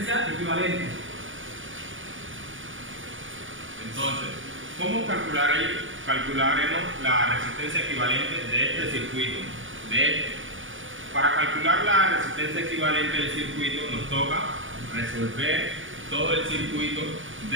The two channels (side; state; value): left; late; 0.57 ms